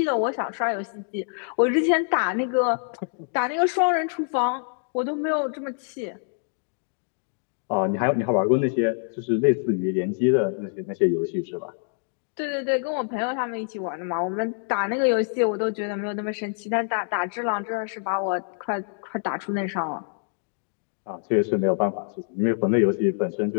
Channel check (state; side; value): silent; right; 61 dB below the other